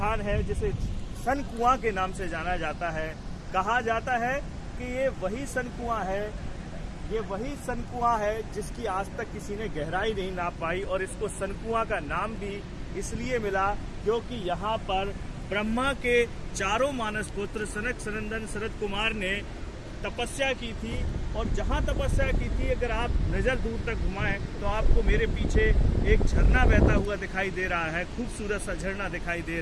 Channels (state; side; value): identical; both; correlation 1.00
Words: है जिसे सन कुआं के नाम से जाना जाता है। कहा जाता है कि ये वही सन कुआं है जिसकी आज तक किसी ने गहराई नहीं नाप पाई, और इसको सन कुआं का नाम भी इसलिए मिला क्योंकि यहाँ पर ब्रह्मा के चारों मानस पुत्र सनक, सनंदन, शरद कुमार ने तपस्या की थी। और जहाँ तपस्या की थी, अगर आप नज़र दूर तक घुमाएं तो आपको मेरे पीछे एक झरना बहता हुआ दिखाई दे रहा है। खूबसूरत सा झरना दिखाई दे